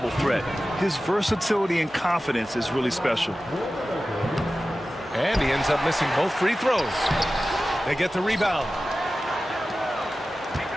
threat. His versatility and confidence is really special. And he ends up missing both free throws. They get the rebound.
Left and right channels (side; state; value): both; normal; correlation 0.95